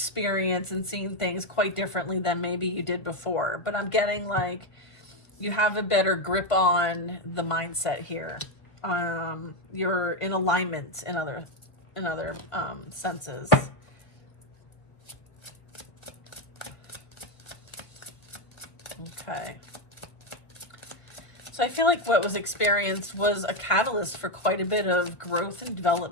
and seeing things quite differently than maybe you did before. But I'm getting like you have a better grip on the mindset here. You're in alignment in other senses. Okay. So I feel like what was experienced was a catalyst for quite a bit of growth and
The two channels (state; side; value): late; right; 1.5 ms